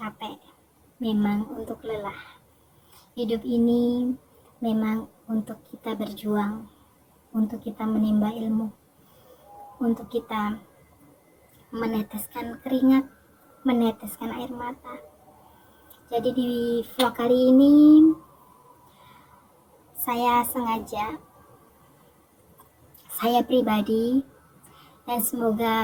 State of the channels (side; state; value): both; identical; correlation 1.00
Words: memang untuk lelah. Hidup ini memang untuk kita berjuang, untuk kita menimba ilmu, untuk kita meneteskan keringat, meneteskan air mata. Jadi di vlog kali ini saya pribadi, dan